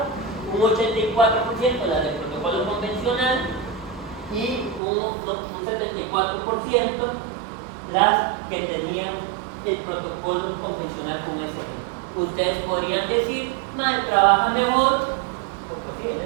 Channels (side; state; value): left; drops out; at 4.8 s